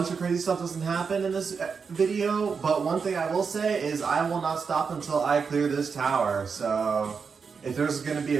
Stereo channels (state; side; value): quieter; left; 5.6 dB